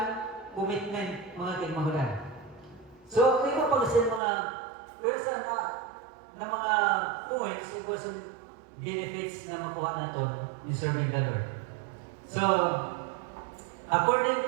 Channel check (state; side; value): drops out; left; at 4.2 s